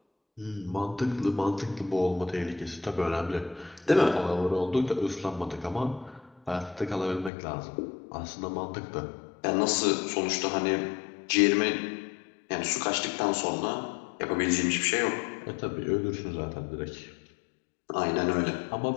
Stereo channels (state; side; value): drops out; right; at 7.3 s